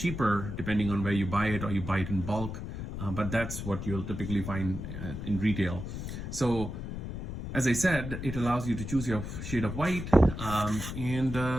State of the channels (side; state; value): left; noise; rumble, 6 dB below the sound